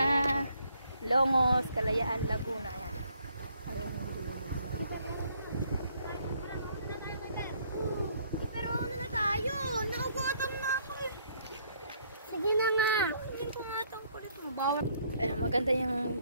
Longos, Kalayaan, Laguna. Ayan. Pero ano na tayo? Naugutom na ako eh. Sige na nga. Hindi ko nga itong kulit mo. Ayan, maganda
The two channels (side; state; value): both; inverted; correlation -0.67